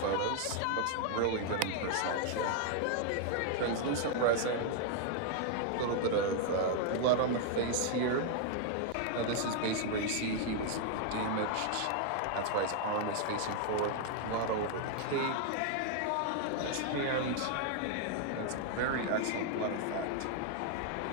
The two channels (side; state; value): both; different; correlation 0.00